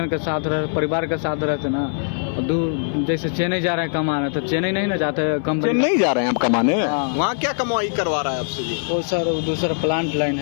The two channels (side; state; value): right; silent; 59 dB below the other